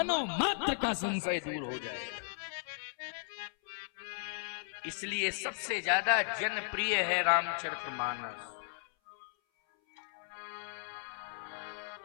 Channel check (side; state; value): right; silent; 54 dB below the other